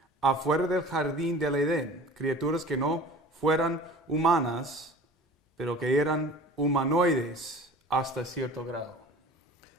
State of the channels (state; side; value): normal; both; correlation 0.42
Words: afuera del jardín del Edén? Criaturas que no fueran humanas, pero que eran humanoides hasta cierto grado.